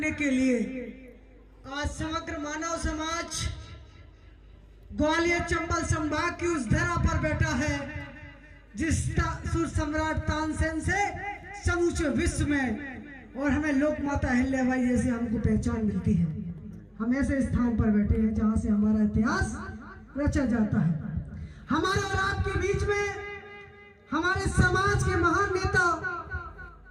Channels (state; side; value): identical; both; correlation 1.00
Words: के लिए आज समग्र मानव समाज ग्वालियर चंबल संभाग की उस धरा पर बैठा है जिस सुर सम्राट तानसेन से समूचे विश्व में और हमें लोक माता अहिल्याबाई जैसे हमको पहचान मिलती है। हम ऐसे स्थान पर बैठे हैं जहां से हमारा इतिहास रचा जाता है। हमारे और आपके बीच में हमारे समाज के महान नेता,